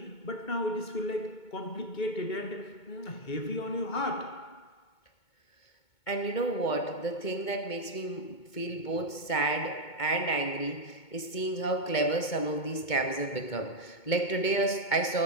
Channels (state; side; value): late; right; 2.2 ms